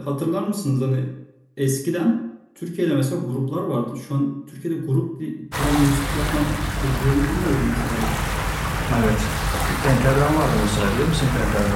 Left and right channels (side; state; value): both; identical; correlation 1.00